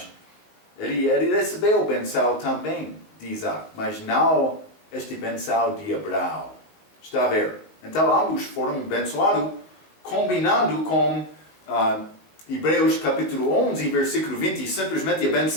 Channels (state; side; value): late; right; 19 ms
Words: ele recebeu benção também de Isaac, mas não este benção de Abraão. Está a ver? Então ambos foram abençoados, combinando com Hebreus capítulo 11, versículo 20, simplesmente a